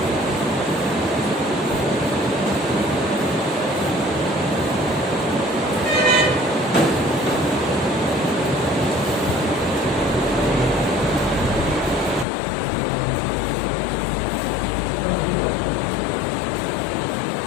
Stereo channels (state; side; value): drops out; right; at 12.2 s